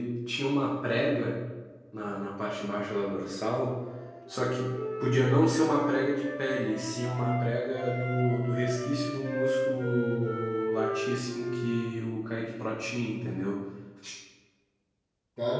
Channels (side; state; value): both; identical; correlation 1.00